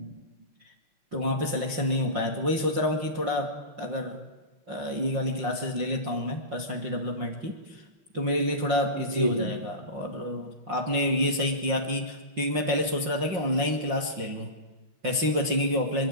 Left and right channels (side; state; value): left; late; 5.6 ms